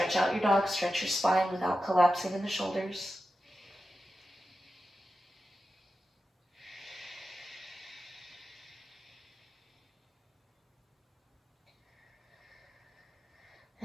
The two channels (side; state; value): both; normal; correlation 0.92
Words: out your dog. Stretch your spine without collapsing in the shoulders.